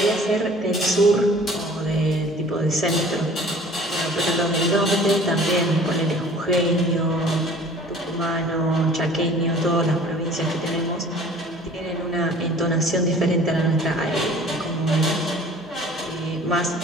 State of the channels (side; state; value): both; normal; correlation 0.48